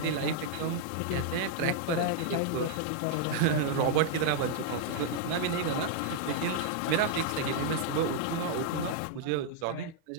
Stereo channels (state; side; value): different; both; correlation -0.01